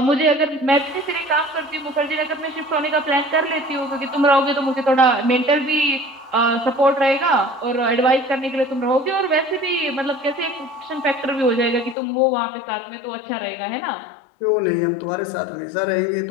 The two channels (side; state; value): right; drops out; at 12.0 s